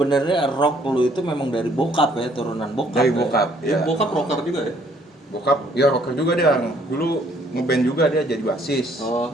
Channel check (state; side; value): normal; both; correlation 0.64